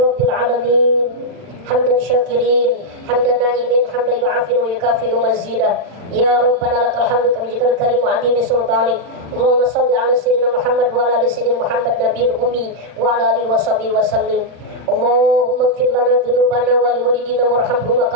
alamin. Hamdan syakirin, hamdan na'imin, hamdan yu'afin wa yukafi'u mazidah. Ya Rabbana lakal hamdu kama jikal karim wa adimi sultanik. Allahumma salli ala sayyidina Muhammad wa ala ali sayyidina Muhammad nabiyil ummi wa ala alihi wa sahbihi wa sallim. Allahumma ighfir lana dhunubana wa liwalidina warhamhuma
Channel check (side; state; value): left; late; 40 ms